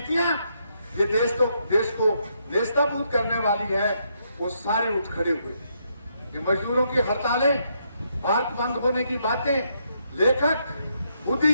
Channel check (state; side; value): inverted; both; correlation -0.76